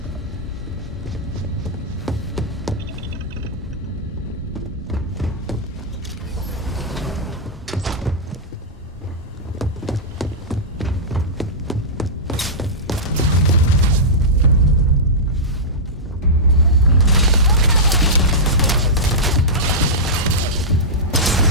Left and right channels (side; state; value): both; normal; correlation -0.13